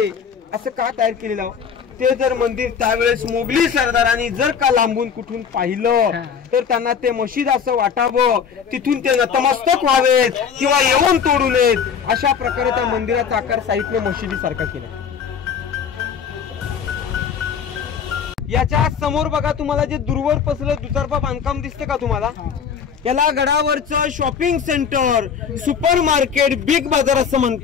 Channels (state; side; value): quieter; right; 6.9 dB